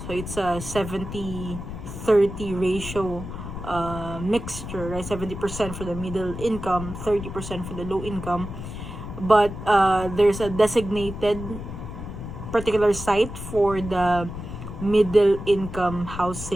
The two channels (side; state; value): left; noise; rumble, 9 dB below the sound